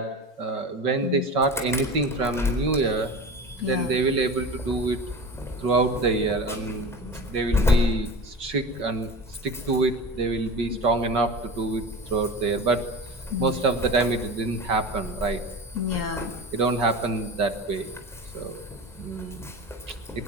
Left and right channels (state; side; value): normal; both; correlation 0.31